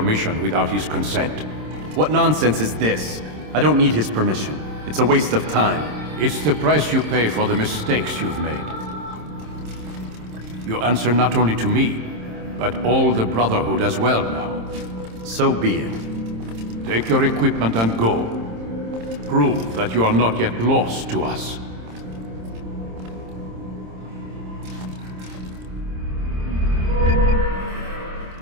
without his consent. What nonsense is this? I don't need his permission. It's a waste of time. It's the price you pay for the mistakes you've made. You answer not only to me, but all the Brotherhood as well now. So be it. Take your equipment and go. Prove that you are not yet lost to us.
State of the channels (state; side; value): late; left; 27 ms